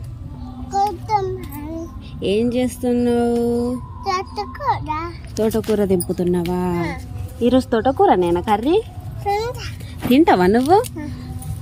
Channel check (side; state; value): both; identical; correlation 1.00